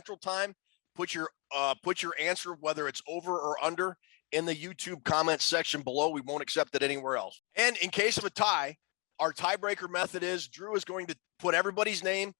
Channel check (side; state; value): right; quieter; 31.2 dB